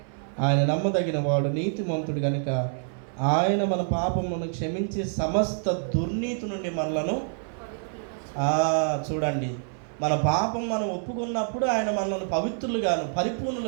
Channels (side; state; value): left; silent; 60 dB below the other